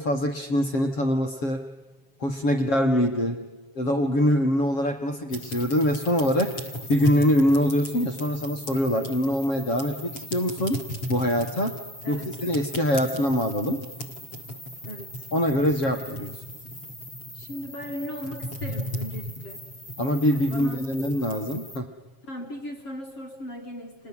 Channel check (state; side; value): late; right; 7.3 ms